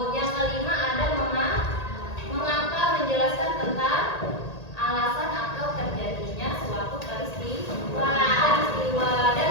Yang kelima ada mengapa, menjelaskan tentang alasan atau terjadinya suatu peristiwa. Dan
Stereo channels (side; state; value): right; late; 1.8 ms